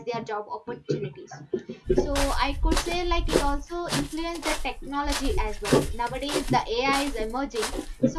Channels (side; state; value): both; identical; correlation 1.00